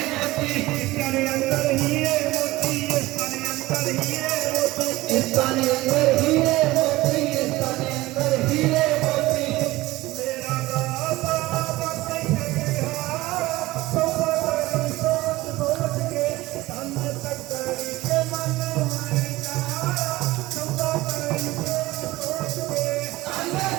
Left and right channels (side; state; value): left; quieter; 18.8 dB